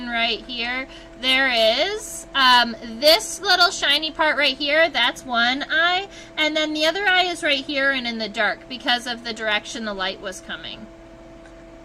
right here, there is this little shiny part right here, that's one eye. And then the other eye is right here and in the dark because of the direction the light was coming.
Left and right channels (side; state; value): both; identical; correlation 1.00